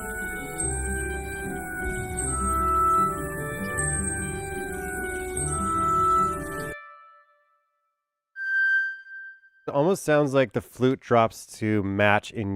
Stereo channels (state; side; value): identical; both; correlation 1.00